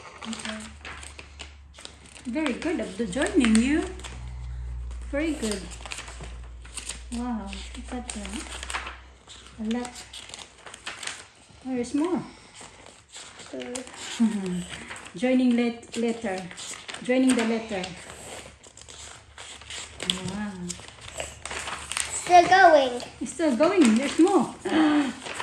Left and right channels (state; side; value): identical; both; correlation 1.00